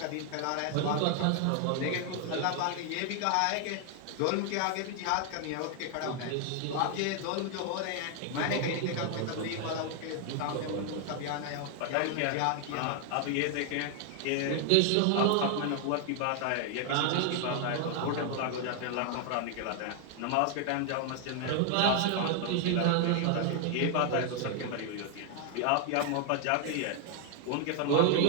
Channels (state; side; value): different; both; correlation 0.00